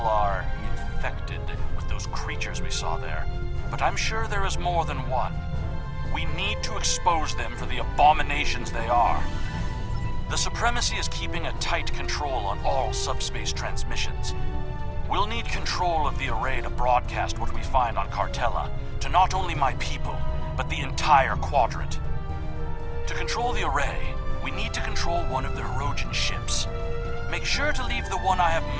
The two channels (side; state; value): both; identical; correlation 1.00